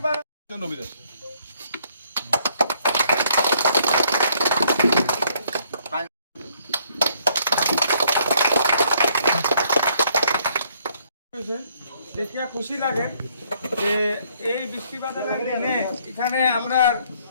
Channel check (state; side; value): inverted; both; correlation -0.67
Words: দেখিয়া খুশি লাগে যে এই বৃষ্টিবাদলের দিনে এখানে